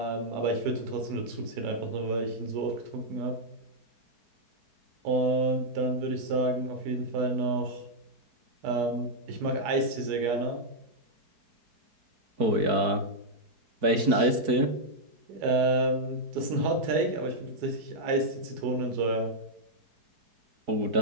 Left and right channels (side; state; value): left; late; 4.6 ms